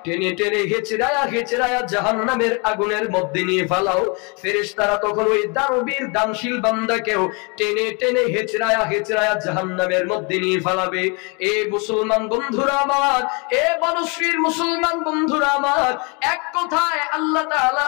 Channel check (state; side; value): quieter; right; 32.1 dB